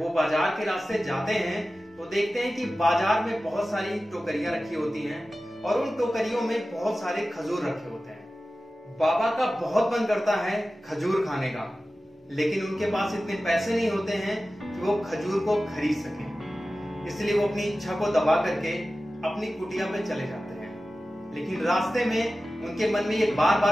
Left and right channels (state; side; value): normal; both; correlation 0.95